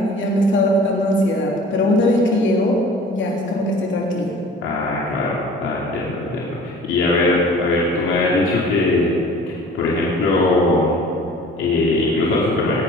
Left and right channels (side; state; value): both; normal; correlation 0.46